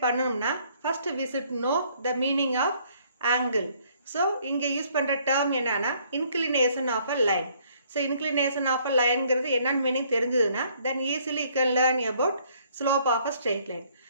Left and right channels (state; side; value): inverted; both; correlation -0.64